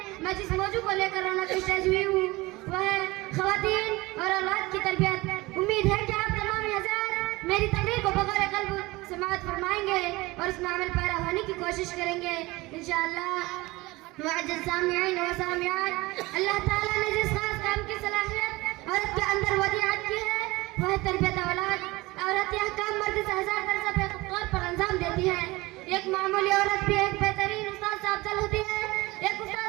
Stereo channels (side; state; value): left; quieter; 21.3 dB